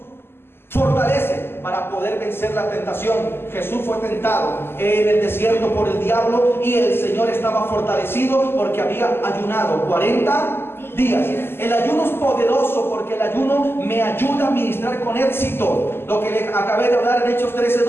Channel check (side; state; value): right; late; 0.11 ms